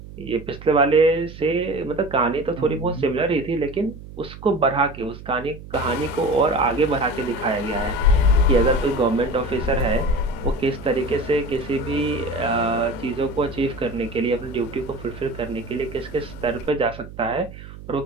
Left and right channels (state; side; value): noise; right; hum, 15 dB below the sound